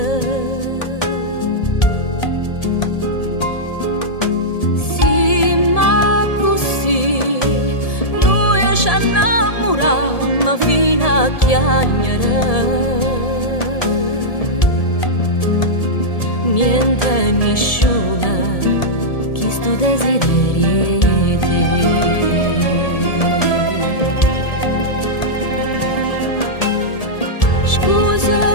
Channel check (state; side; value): late; right; 1.7 ms